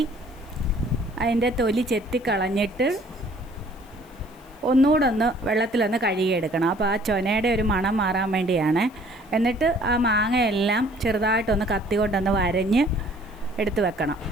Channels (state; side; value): noise; left; hiss, 29 dB below the sound